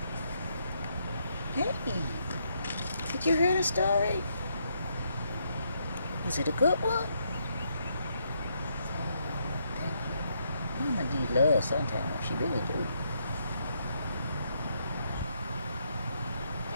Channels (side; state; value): both; inverted; correlation -0.76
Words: Hey, did you hear the story? Was it a good one? Mama need love sometimes. She really do.